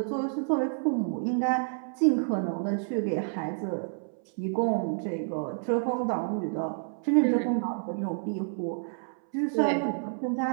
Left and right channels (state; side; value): silent; left; 59 dB below the other